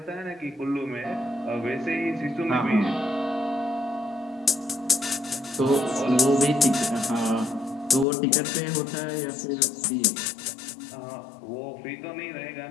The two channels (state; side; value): drops out; right; at 8.1 s